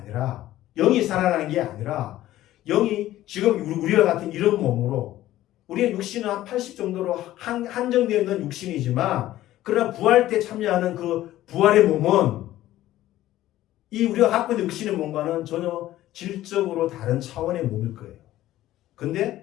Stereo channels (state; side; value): quieter; right; 14.5 dB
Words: 영이 살아나는 게 아니라 영이 지금 우리와 같은 이런 몸으로, 우리의 육신은 한 80 정도로 한정되어 있는 육신이지만 그러나 부활 때 참여하는 그 부활의 몸은 이 우리가 갖고 있는 육신의 몸과는 전혀 질적으로 다른 차원의 몸일 거예요.